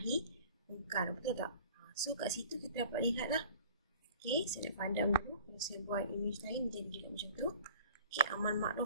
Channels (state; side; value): inverted; both; correlation -0.47